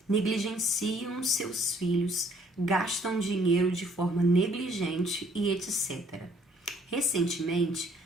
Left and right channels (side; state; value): both; normal; correlation 0.62